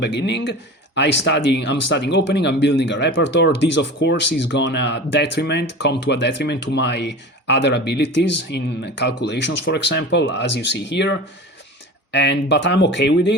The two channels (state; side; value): normal; both; correlation 0.34